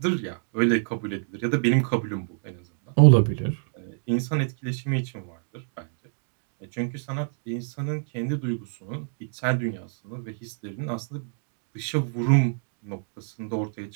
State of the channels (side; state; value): left; silent; digital silence